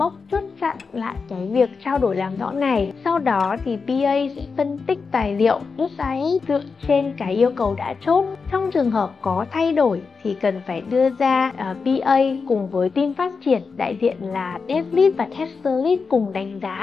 chốt chặn lại cái việc trao đổi làm rõ này. Sau đó thì PA sẽ phân tích tài liệu SIS dựa trên cái yêu cầu đã chốt. Trong trường hợp có thay đổi thì cần phải đưa ra PA cùng với team phát triển, đại diện là Dev Lead và Tester Lead cùng đánh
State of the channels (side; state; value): right; quieter; 4.9 dB